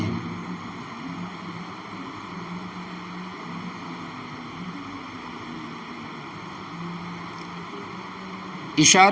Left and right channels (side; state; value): both; identical; correlation 1.00